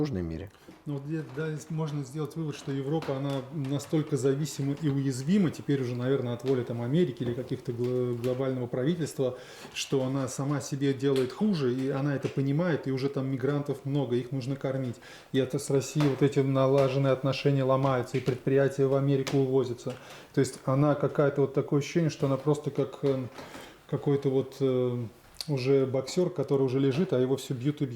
мире. Ну, вот да, можно сделать вывод, что Европа, она настолько зависима и уязвима, теперь уже, наверное, от воли там, Америки или каких-то глобального правительства, что она сама себе делает хуже, и она это понимает, и уже там мигрантов много, их нужно кормить. И это с Россией вот эти налаженные отношения ломаются, и предприятия в Америку увозятся. То есть она какая-то вот такое ощущение, что она просто как какой-то вот уже боксер, который уже лежит, а его все бьют и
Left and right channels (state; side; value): identical; both; correlation 1.00